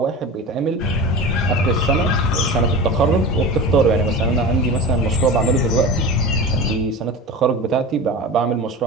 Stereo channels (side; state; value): both; normal; correlation 0.31